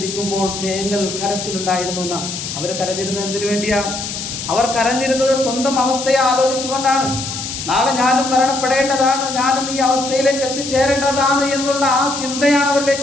തേങ്ങൽ കരച്ചിലുണ്ടായിരുന്നു എന്നാ. അവർ കരഞ്ഞിരുന്നത് എന്തിനു വേണ്ടിയാ? അവർ കരഞ്ഞിരുന്നത് സ്വന്തം അവസ്ഥയെ ആലോചിച്ചുകൊണ്ടാണ്. നാളെ ഞാനും മരണപ്പെടേണ്ടതാണ്, ഞാനും ഈ അവസ്ഥയിലേക്ക് എത്തിച്ചേരേണ്ടതാണ് എന്നുള്ള ആ ചിന്തയാണ്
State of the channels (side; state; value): left; noise; hiss, 6 dB below the sound